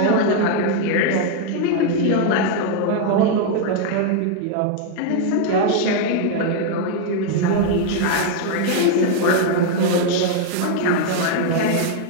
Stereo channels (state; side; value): different; both; correlation 0.00